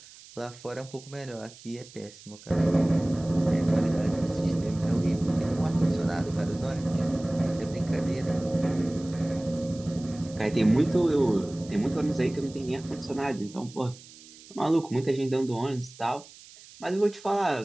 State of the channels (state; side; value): noise; right; hiss, 20 dB below the sound